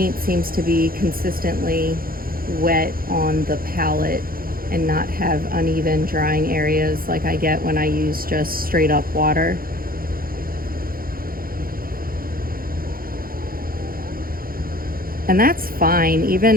seems to be consistently wet on the palette and not have uneven drying areas like I get when I use just straight up water. And that's fine, even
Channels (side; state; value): left; late; 0.42 ms